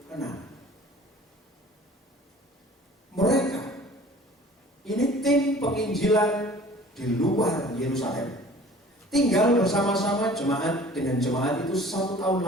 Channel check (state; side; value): normal; both; correlation 0.47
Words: Mereka, ini tim penginjilan di luar Yerusalem, tinggal bersama-sama jemaat dengan jemaat itu 1 tahun